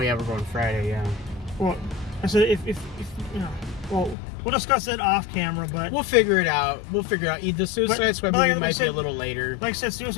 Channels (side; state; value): right; drops out; at 4.2 s